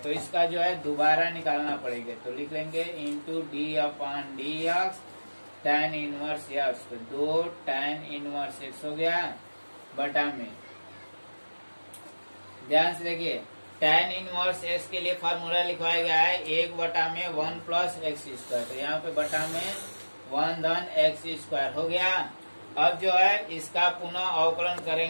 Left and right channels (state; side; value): inverted; both; correlation -1.00